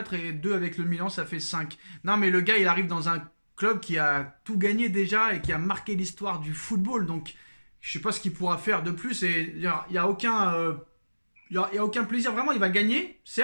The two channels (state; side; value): inverted; both; correlation -1.00